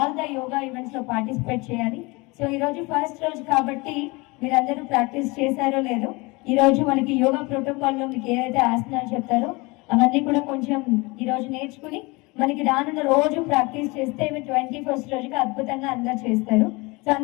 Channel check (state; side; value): quieter; right; 25.3 dB